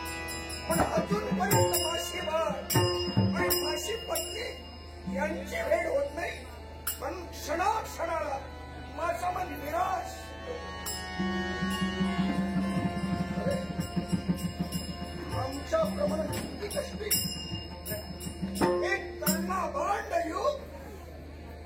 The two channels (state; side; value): identical; both; correlation 1.00